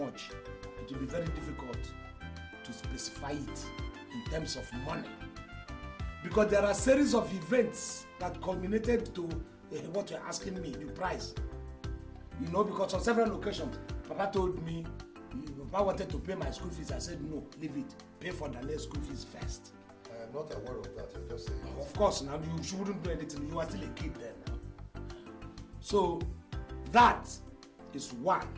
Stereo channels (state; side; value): identical; both; correlation 1.00